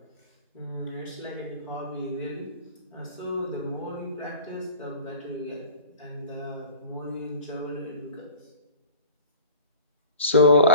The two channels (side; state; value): both; inverted; correlation -0.42